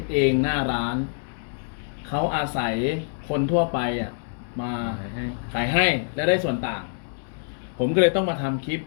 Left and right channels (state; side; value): silent; right; digital silence